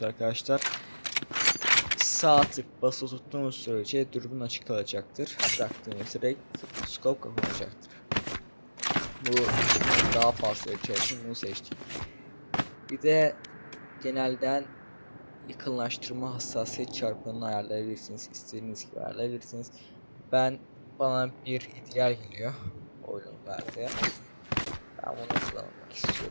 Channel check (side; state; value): both; inverted; correlation -1.00